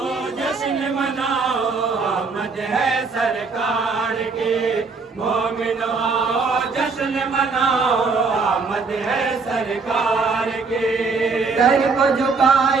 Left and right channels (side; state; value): left; quieter; 4.5 dB